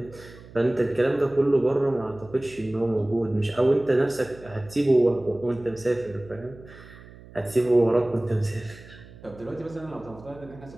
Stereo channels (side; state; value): right; noise; hum, 20 dB below the sound